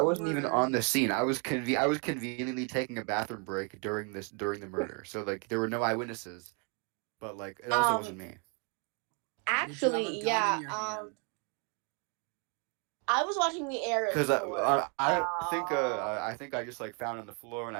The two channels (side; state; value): left; quieter; 36.6 dB